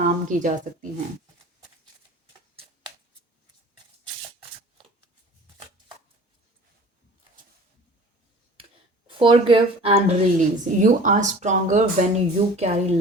की जा सकती हैं। Forgive and release. You are stronger when you carry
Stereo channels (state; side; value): normal; both; correlation 0.44